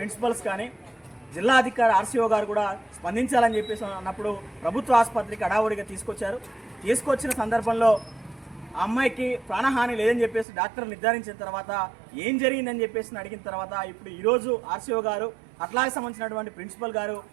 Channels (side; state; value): left; drops out; at 10.5 s